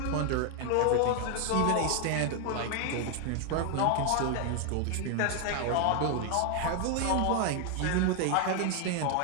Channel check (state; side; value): different; both; correlation 0.00